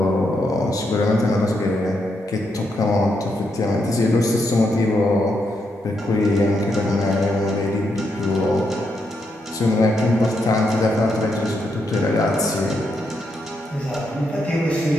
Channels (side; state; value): both; normal; correlation 0.80